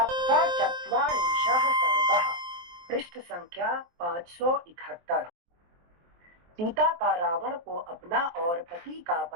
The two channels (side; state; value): left; late; 23 ms